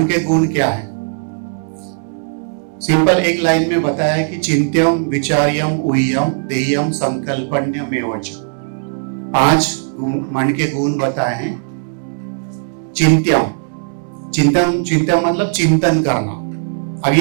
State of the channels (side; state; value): left; silent; 68 dB below the other